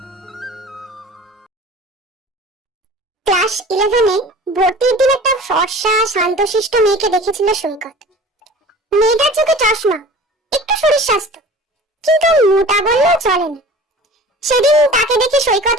ক্লাস 11-এ ভর্তির দিন একটা ফর্সা শান্তশিষ্ট মেয়েকে দেখেছিল সৈকত। মেয়েটার চোখে চশমা, একটু শরীর স্বাস্থ্য, কিন্তু মোটা বললেও চলে না। সেদিন তাকে দেখে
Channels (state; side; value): normal; both; correlation 0.41